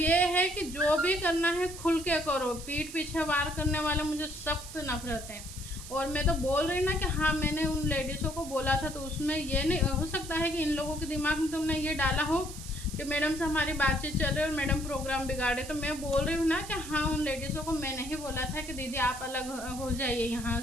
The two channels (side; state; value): right; noise; hiss, 13 dB below the sound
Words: ये है कि जो भी करना है खुल के करो, पीठ पीछे वार करने वाले मुझे सख्त नफरत है। और मैं तो बोल रही ना कि हाँ मैंने उन लेडीज़ों को बोला था, तो उसमें ये नहीं हो सकता है कि इन लोगों के दिमाग में तुमने ये डाला हो कि मैडम से हमारी बातचीत चल रही है और मैडम प्रोग्राम बिगाड़े। तो मैं बोल रही हूँ ना कि हाँ उन लेडीज़ों को मैंने ही बोला था कि दीदी आप अलग हो जाइए यहाँ